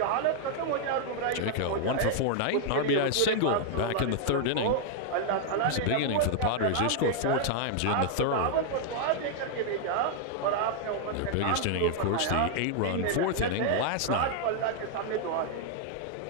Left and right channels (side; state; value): both; different; correlation 0.00